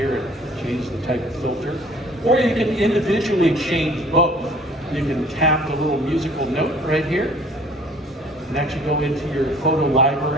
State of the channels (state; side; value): normal; both; correlation 0.52